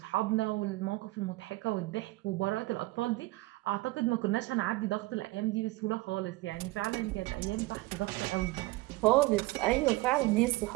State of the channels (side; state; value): left; quieter; 20.6 dB